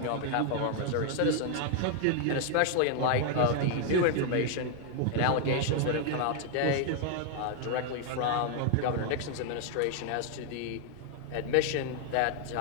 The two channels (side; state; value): both; different; correlation 0.00